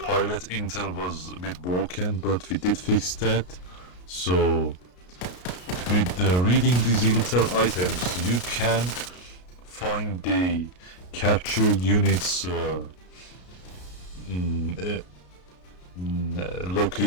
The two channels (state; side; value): late; right; 33 ms